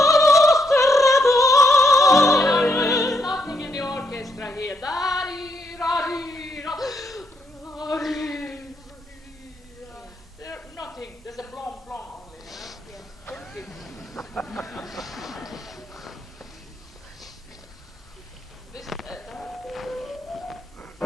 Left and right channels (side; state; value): both; normal; correlation 0.77